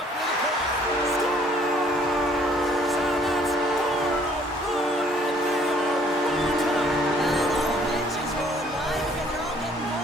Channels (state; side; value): normal; both; correlation 0.60